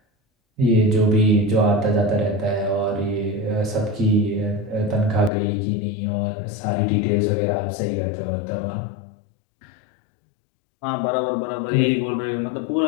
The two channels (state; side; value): drops out; right; at 5.3 s